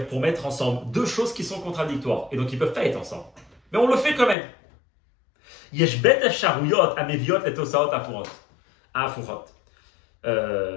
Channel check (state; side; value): drops out; right; at 4.4 s